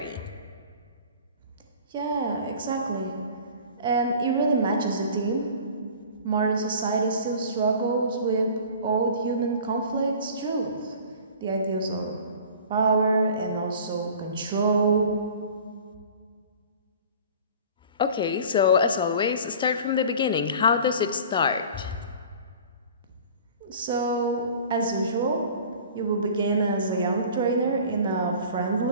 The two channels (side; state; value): both; inverted; correlation -0.43